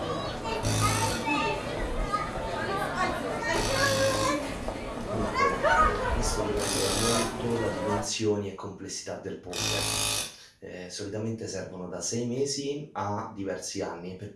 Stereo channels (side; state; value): both; identical; correlation 1.00